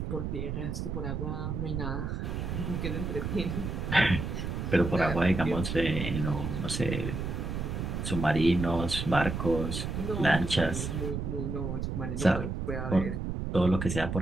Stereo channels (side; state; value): right; noise; rumble, 3 dB below the sound